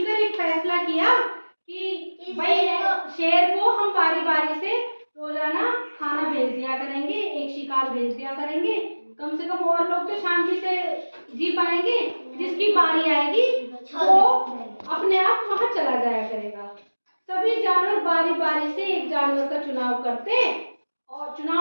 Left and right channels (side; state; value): both; inverted; correlation -1.00